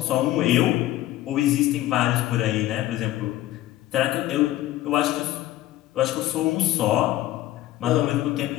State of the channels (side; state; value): right; quieter; 14.8 dB